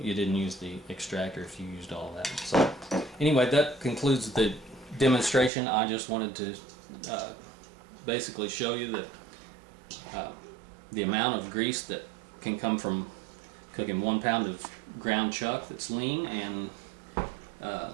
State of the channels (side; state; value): left; drops out; at 5.5 s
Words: didn't use the extractor, if you used all that. So anyway, that concludes the demonstration. I just wanted to basically show you that the amount of grease that can come from cooking 1 pound of ground chuck that's lean, and